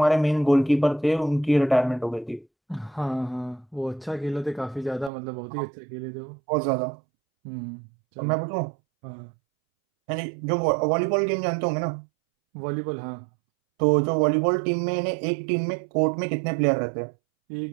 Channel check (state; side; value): drops out; left; at 5.1 s